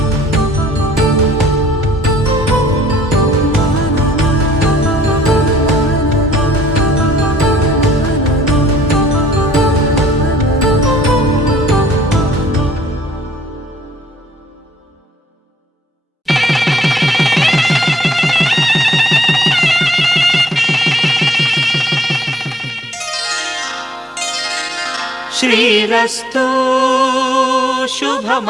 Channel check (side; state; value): both; normal; correlation 0.64